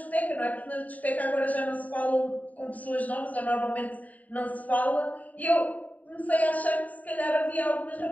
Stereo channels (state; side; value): late; right; 0.073 ms